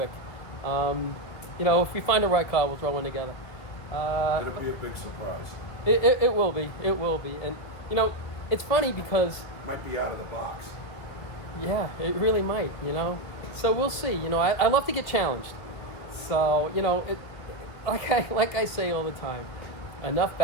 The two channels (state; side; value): late; right; 2.3 ms